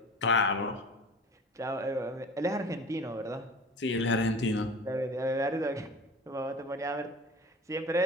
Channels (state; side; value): normal; both; correlation 0.39